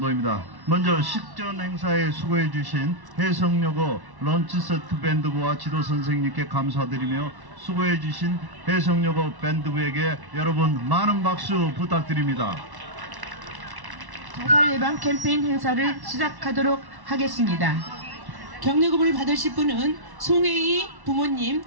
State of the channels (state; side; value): late; left; 1.1 ms